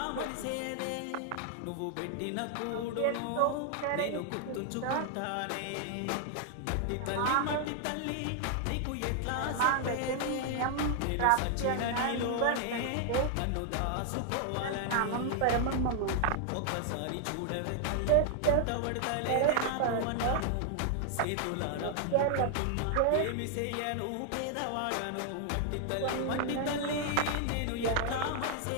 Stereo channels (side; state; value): both; different; correlation 0.00